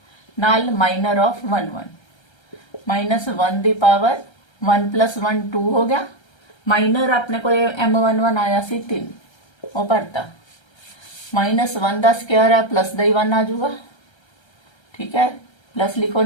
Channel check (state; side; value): late; right; 1.3 ms